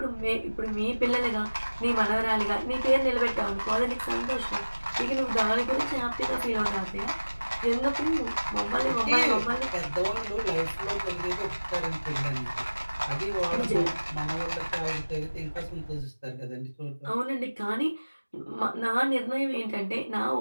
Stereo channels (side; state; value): both; inverted; correlation -1.00